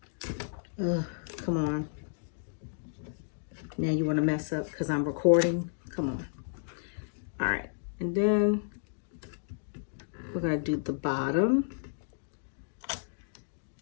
Come on. Now you wanna mess up because I'm recording? Come on. All right, and then we're gonna do the bottom.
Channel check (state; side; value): silent; right; digital silence